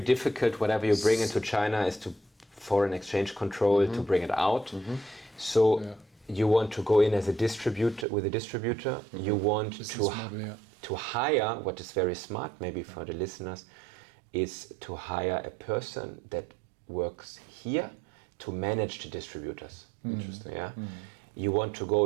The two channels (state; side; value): drops out; left; at 8.1 s